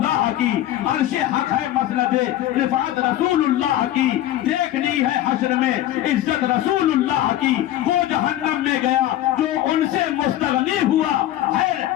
کی، عرش حق ہے مسند رفعت رسول اللہ کی، دیکھنی ہے حشر میں عزت رسول اللہ کی. وہ جہنم میں گیا جو ان سے مستغنی ہوا، ہے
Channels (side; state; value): right; quieter; 13.3 dB